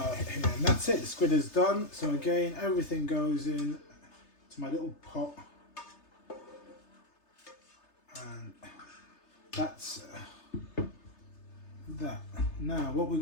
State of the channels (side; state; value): right; late; 3.3 ms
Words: here, and that's it. The squid is done. So again, everything goes in to my little pot. And that's that. Now what we're